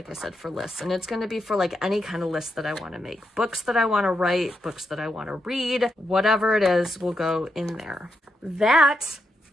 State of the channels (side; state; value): both; normal; correlation 0.83